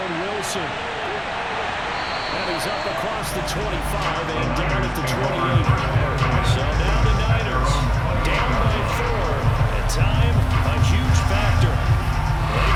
Wilson. And he's up across the 25 and down at the 28. So now the Niners down by 4. At time, a huge factor.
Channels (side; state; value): both; identical; correlation 1.00